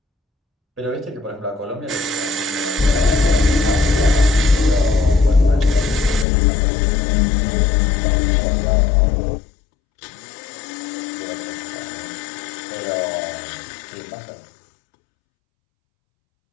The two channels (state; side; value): drops out; right; at 6.2 s